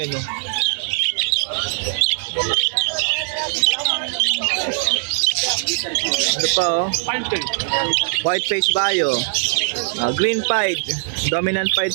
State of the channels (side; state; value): left; silent; digital silence